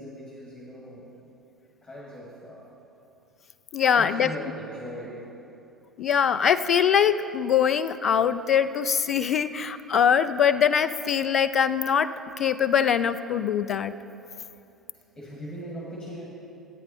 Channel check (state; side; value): quieter; right; 7.5 dB